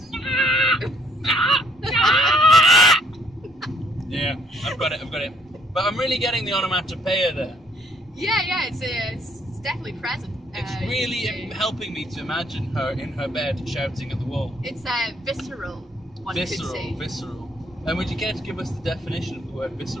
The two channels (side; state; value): both; normal; correlation 0.65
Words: Yeah, I've got it. But I'm really getting the onomatopoeia there. Yeah, it's definitely present. It's really helping me to imagine her in her bed shouting at the wall. It's visceral, one could say. Visceral. And would you care to give us the definition of the word